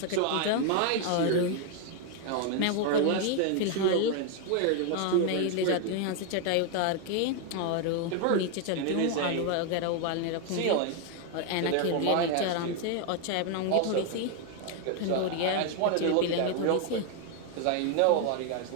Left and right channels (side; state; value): both; different; correlation 0.01